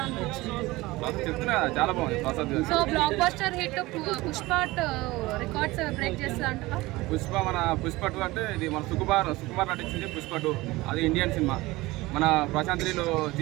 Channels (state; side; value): quieter; left; 20.2 dB